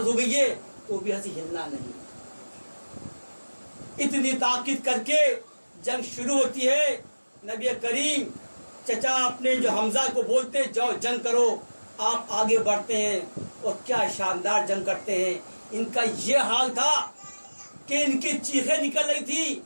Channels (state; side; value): inverted; both; correlation -1.00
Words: ہو گئی ہے تو بھی ایسے ہلنا نہیں۔ اتنی تاکید کر کے جنگ شروع ہوتی ہے۔ نبی کریم چچا اپنے جو حمزہ کو بولتے جاؤ جنگ کرو، آپ آگے بڑھتے ہیں اور کیا شاندار جنگ کرتے ہیں۔ ان کا یہ حال تھا کہ ان کی چیخیں نکل رہی تھی،